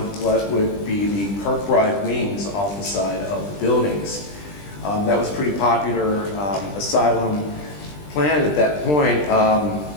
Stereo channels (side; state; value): right; late; 20 ms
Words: what would be the Kirkbride wings off the side of the buildings. That was a pretty popular asylum plan at that point.